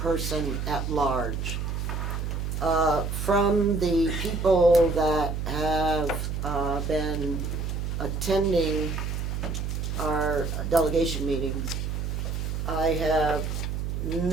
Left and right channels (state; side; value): noise; right; hum, 2 dB below the sound